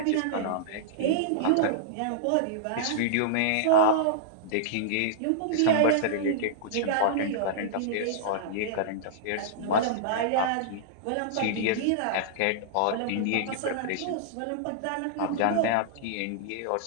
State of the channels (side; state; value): both; different; correlation -0.02